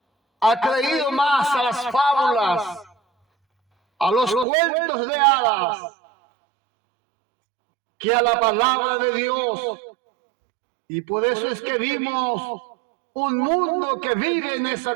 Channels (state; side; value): drops out; left; at 4.5 s